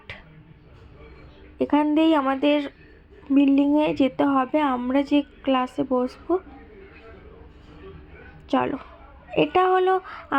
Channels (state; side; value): identical; both; correlation 1.00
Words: এখান দিয়েই আমাদের বিল্ডিংয়ে যেতে হবে, আমরা যে ক্লাসে বসবো। চলো। এটা হলো